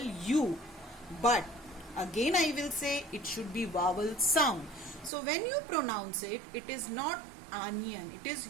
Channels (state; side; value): drops out; left; at 5.1 s